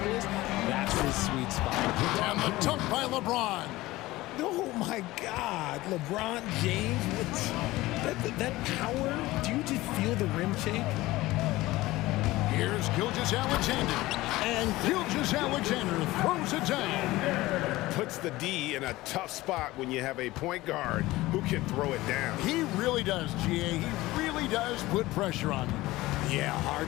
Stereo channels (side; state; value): right; quieter; 18.5 dB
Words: that's his sweet spot. And the dunk by LeBron. Oh, my God. LeBron James, that power. Do you just feel the rim shake? Here's Gilgeous-Alexander. And Gilgeous-Alexander throws it down. Puts the D in a tough spot when you have a point guard who can throw it down. He really does, GA. He really does put pressure on him. Yeah, hard